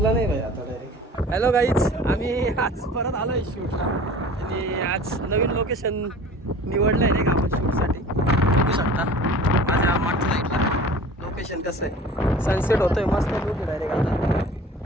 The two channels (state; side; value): normal; both; correlation 0.43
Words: नाही भाई आता डायरेक्ट. हॅलो गाईज, आम्ही आज परत आलो आहे शूटला. आणि आज नवीन लोकेशन निवडलं आहे नाही का आपण शूटसाठी. बघू शकता माझ्या मागच्या साईडला लोकेशन कसं आहे. सनसेट होतोय मस्त लुक डायरेक्ट आता.